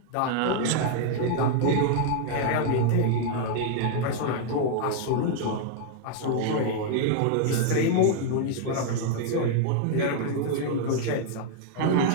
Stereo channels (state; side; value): different; both; correlation 0.00